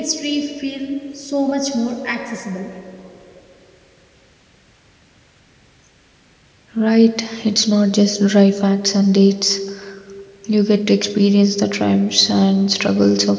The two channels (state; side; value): identical; both; correlation 1.00